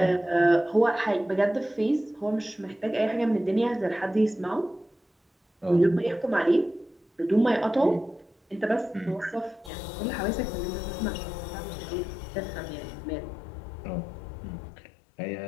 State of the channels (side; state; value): right; drops out; at 9.7 s